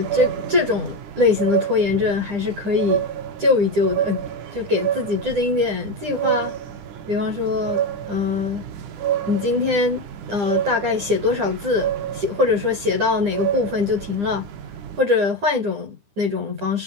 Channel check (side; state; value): left; late; 10 ms